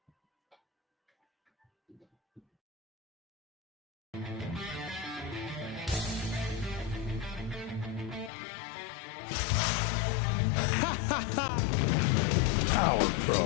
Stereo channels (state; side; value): drops out; right; at 8.3 s